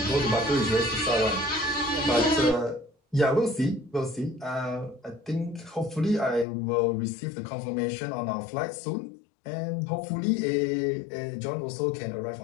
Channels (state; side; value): drops out; right; at 6.5 s